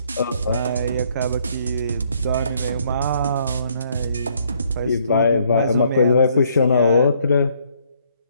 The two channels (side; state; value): both; inverted; correlation -0.67